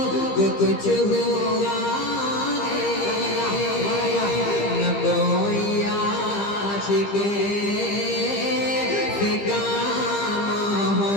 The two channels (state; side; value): late; right; 15 ms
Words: कुछ हुआ है, न कोई आशिक से काम